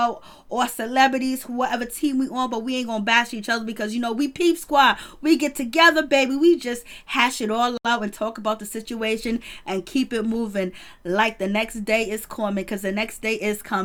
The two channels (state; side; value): identical; both; correlation 1.00